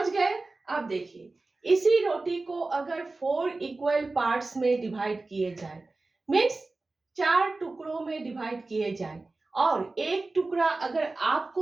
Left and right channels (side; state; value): left; quieter; 3.4 dB